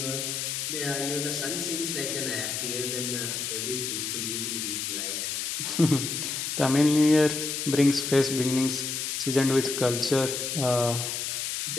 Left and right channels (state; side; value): noise; left; hiss, 2 dB below the sound